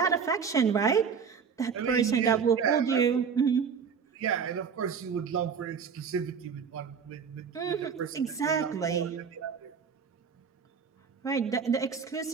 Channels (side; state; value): left; quieter; 6.3 dB